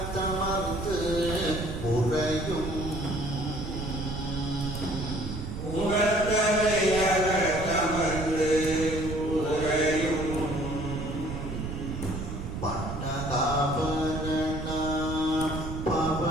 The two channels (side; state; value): right; noise; rumble, 6 dB below the sound